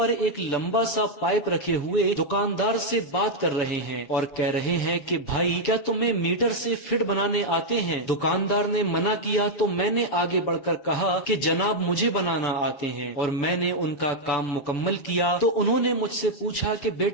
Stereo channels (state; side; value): late; right; 6.9 ms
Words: एक लंबा सा पाइप रखे हुए दुकानदार से बात कर रहे हैं और कह रहे हैं कि भाई, क्या तुम्हें मीटर से फिट बनाने आते हैं? दुकानदार ने मना किया तो मैंने आगे बढ़कर कहा कि जनाब, मुझे बनाना आते हैं। और मैंने उनका काम मुकम्मल किया तो उन्होंने मुझसे पूछा कि